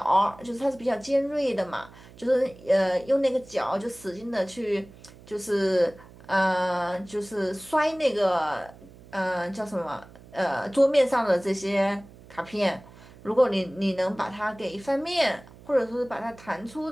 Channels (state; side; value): noise; right; hum, 21 dB below the sound